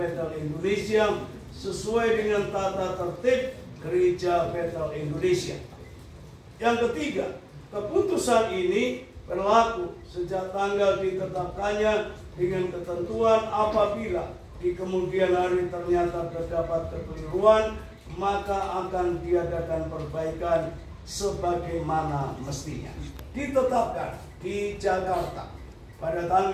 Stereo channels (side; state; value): both; identical; correlation 1.00